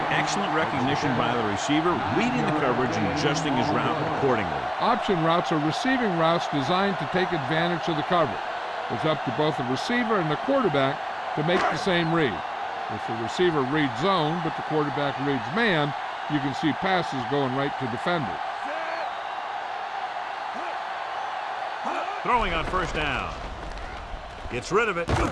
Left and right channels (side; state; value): both; identical; correlation 1.00